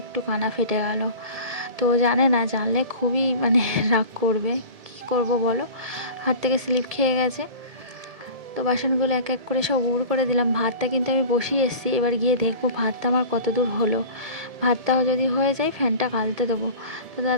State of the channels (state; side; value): late; left; 1.7 ms